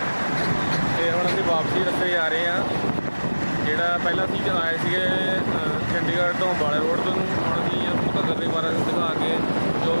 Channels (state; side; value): inverted; both; correlation -1.00